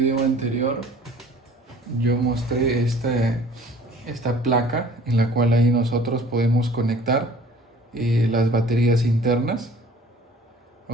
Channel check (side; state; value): both; normal; correlation 0.50